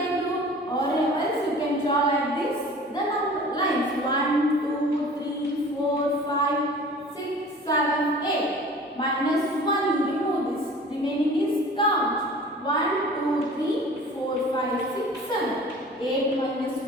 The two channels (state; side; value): normal; both; correlation 0.44